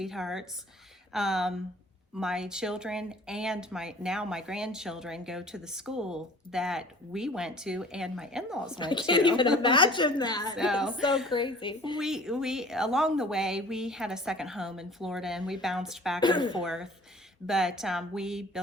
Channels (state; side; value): normal; both; correlation 0.48